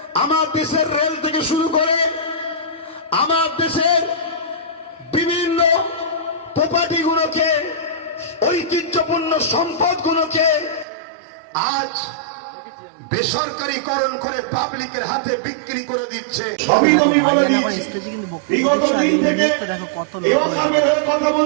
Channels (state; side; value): drops out; left; at 10.9 s